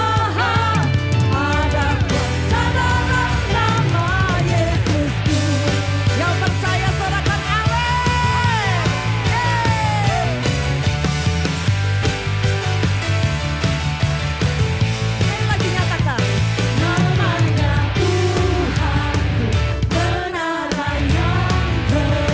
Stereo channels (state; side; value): identical; both; correlation 1.00